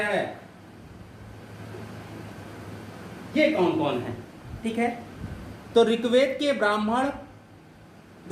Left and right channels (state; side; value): identical; both; correlation 1.00